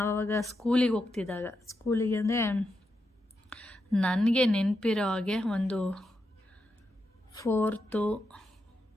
ಸ್ಕೂಲಿಗೆ ಹೋಗ್ತಿದ್ದಾಗ, ಸ್ಕೂಲಿಗೆ ಅಂದರೆ ನನಗೆ ನೆನಪಿರೋ ಹಾಗೆ ಒಂದು 4th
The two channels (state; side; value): normal; both; correlation 0.85